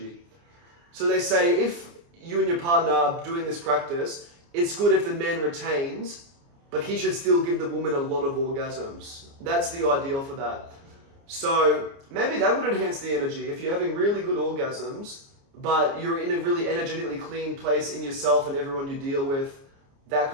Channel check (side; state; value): left; late; 29 ms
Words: So they say if you and your partner are doing this practice, it's good if the man retains, but he should still give the woman a lot of orgasms. That's the ideal for that. So maybe that would enhance the energy. If you're having really good orgasms, but you're in a really energetically clean place in yourself and everyone you deal with, that